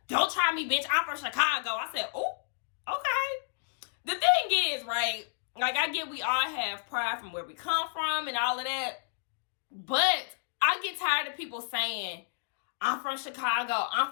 Don't try me, bitch. I'm from Chicago. I said, oh, okay. The thing is, right, like I get we all have pride from where we come from and all of that. But I get tired of people saying, I'm from Chicago, I'm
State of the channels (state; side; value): silent; right; digital silence